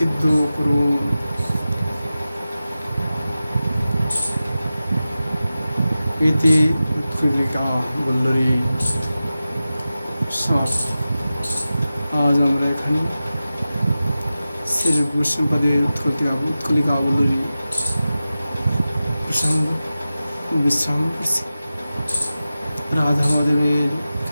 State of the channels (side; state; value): both; inverted; correlation -0.94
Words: করুন। ইতি উৎকলিকা বল্লরী সমাপ্ত। আজ আমরা এখানে শ্রী বৈষ্ণবদের উৎকলিকা বল্লরী প্রসঙ্গ বিশ্রাম করছি। রাধা মাধবের